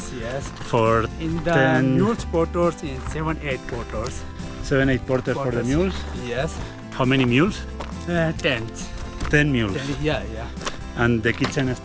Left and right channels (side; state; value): both; identical; correlation 1.00